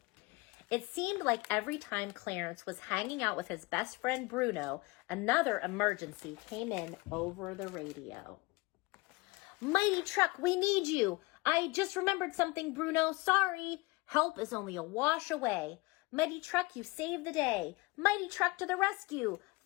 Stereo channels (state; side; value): quieter; right; 24.0 dB